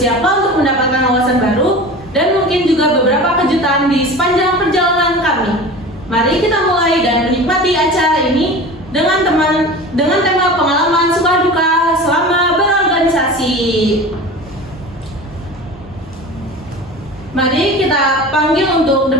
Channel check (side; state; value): both; normal; correlation 0.35